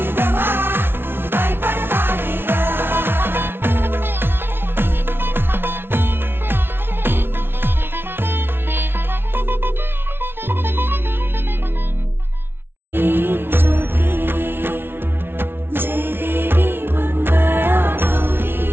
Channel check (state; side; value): late; left; 0.11 ms